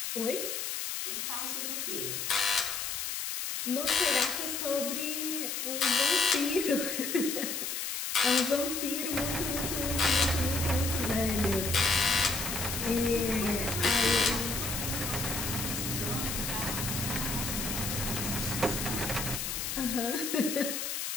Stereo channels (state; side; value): noise; left; hiss, 3 dB below the sound